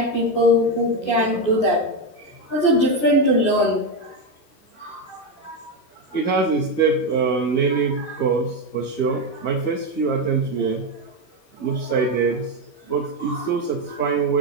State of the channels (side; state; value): right; late; 14 ms